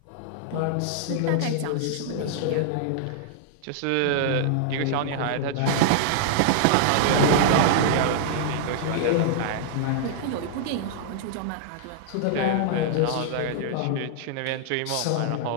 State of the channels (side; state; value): both; different; correlation -0.01